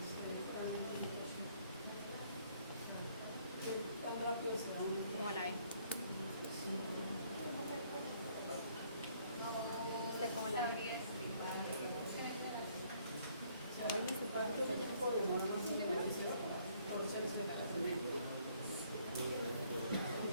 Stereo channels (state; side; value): inverted; both; correlation -0.65